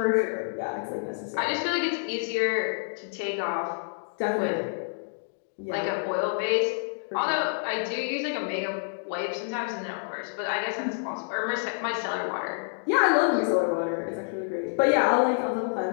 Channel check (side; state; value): right; silent; digital silence